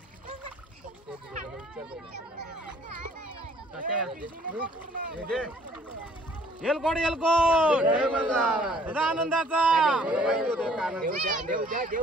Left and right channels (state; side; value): normal; both; correlation 0.58